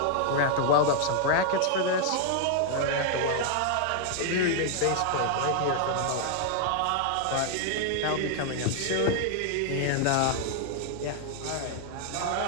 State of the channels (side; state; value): both; different; correlation 0.00